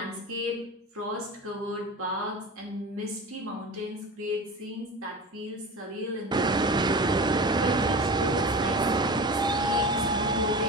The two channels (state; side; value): normal; both; correlation 0.31